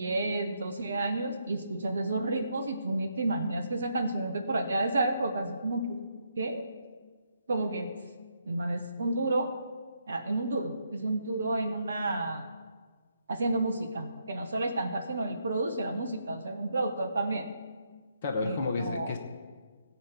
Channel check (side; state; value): both; inverted; correlation -0.77